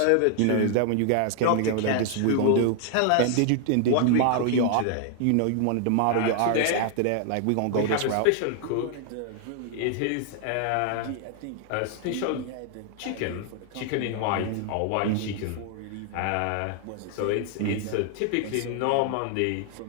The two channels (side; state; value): both; different; correlation 0.00